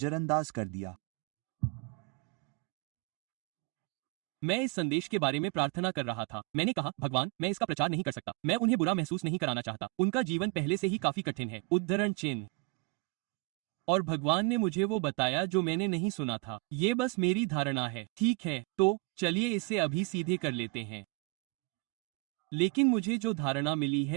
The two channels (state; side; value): quieter; left; 26.4 dB